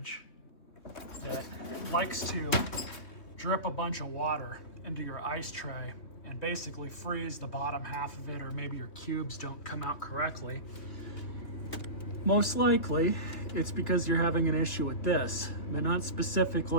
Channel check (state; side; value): late; right; 3.1 ms